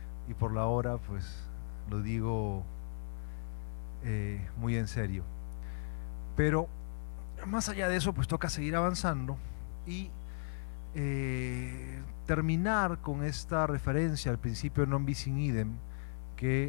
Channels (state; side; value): silent; right; 54 dB below the other